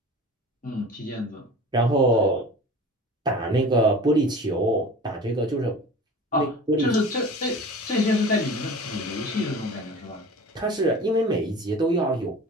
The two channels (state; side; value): normal; both; correlation 0.39